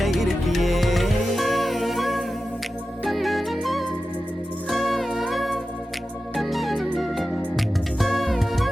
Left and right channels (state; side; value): normal; both; correlation 0.93